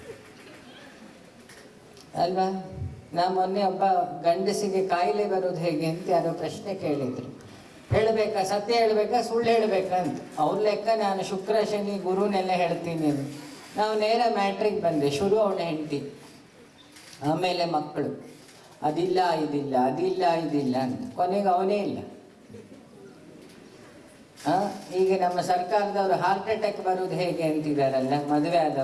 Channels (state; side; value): identical; both; correlation 1.00